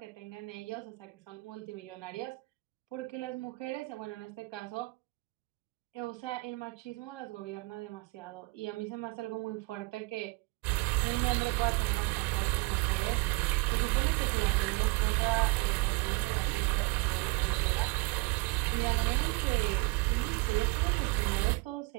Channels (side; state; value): left; quieter; 25.6 dB